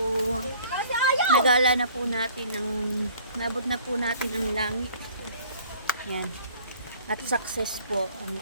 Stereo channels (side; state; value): both; inverted; correlation -0.52